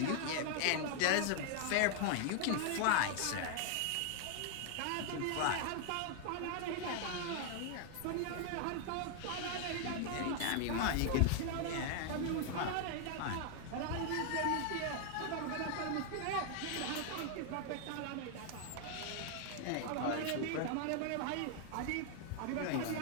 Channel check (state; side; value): different; both; correlation 0.00